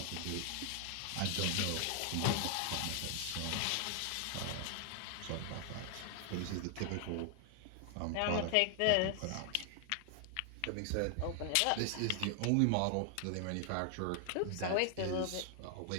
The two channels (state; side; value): different; both; correlation 0.00